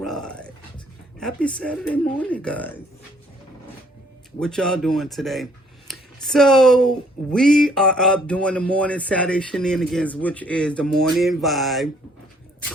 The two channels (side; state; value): both; normal; correlation 0.63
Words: Happy Saturday morning, guys. What y'all doing today? So, we are up doing the morning Saturday shenanigans, which is the morning vibe,